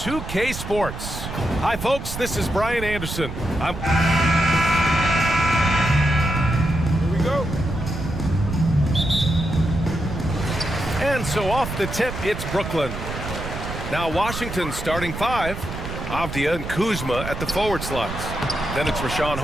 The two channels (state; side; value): noise; right; rumble, 7 dB below the sound